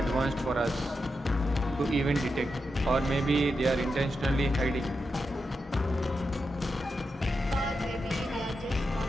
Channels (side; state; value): both; normal; correlation 0.87